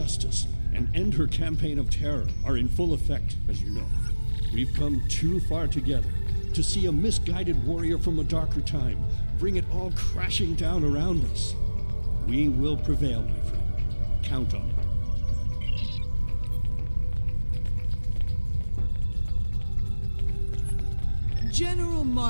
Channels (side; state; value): both; inverted; correlation -1.00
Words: and end her campaign of terror are in full effect, as you know. We've come too far together to see a misguided warrior from a darker time bring it all crashing down around us. We will prevail, my friend. Count on it. General